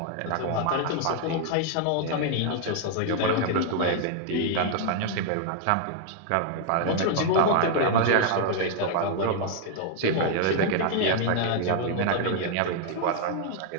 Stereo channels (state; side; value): different; both; correlation 0.00